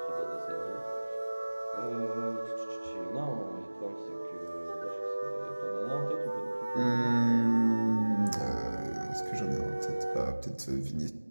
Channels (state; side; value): inverted; both; correlation -1.00